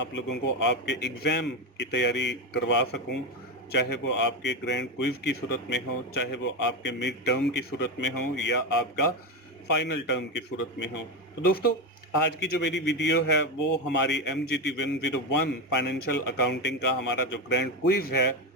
लोगों को आपके एग्ज़ाम की तैयारी करवा सकूं, चाहे वो आपके ग्रैंड क्विज़ की सूरत में हो, चाहे वो आपके मिड टर्म की सूरत में हो या आपका फाइनल टर्म की सूरत में हो। तो दोस्तों, आज की जो मेरी वीडियो है वो हमारी MGT 101 फाइनेंशियल अकाउंटिंग का हमारा जो ग्रैंड क्विज है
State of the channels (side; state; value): both; normal; correlation 0.14